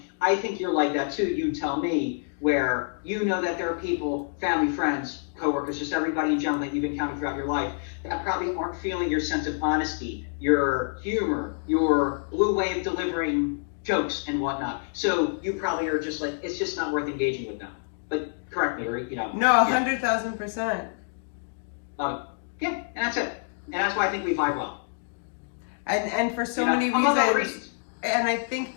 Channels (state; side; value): silent; right; digital silence